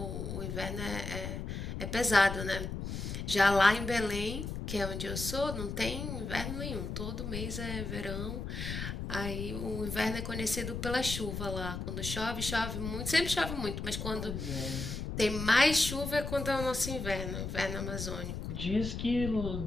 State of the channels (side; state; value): left; noise; rumble, 5 dB below the sound